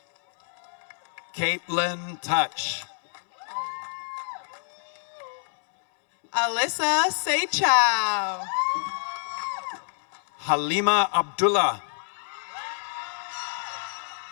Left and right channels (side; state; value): right; silent; digital silence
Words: Caitlin Touch. Alyssa Seychow. Halima Abdullah.